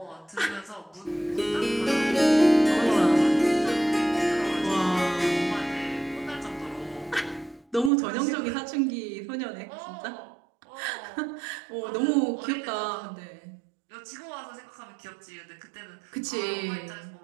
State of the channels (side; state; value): left; drops out; at 7.9 s